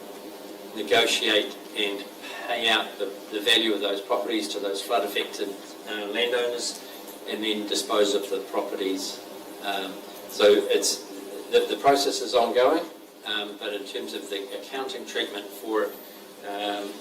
negotiate and pay out the value of those properties to those flood affected landowners, and then dispose of the properties. So it's the process is ongoing, but in terms of the accounting treatment for it,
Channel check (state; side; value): identical; both; correlation 1.00